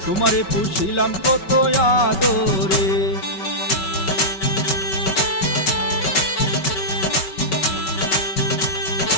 তোমারে পুষিলাম কত আদরে।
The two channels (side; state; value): right; late; 5.3 ms